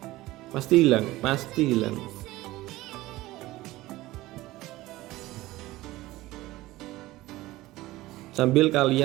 Pasti hilang, pasti hilang. Sambil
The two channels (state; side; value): quieter; left; 17.9 dB